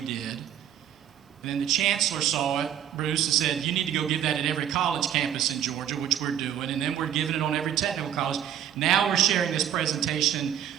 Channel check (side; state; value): left; quieter; 10.2 dB